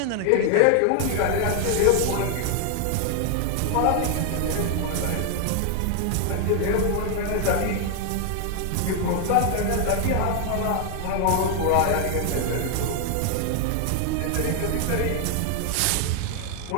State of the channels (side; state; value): both; different; correlation 0.00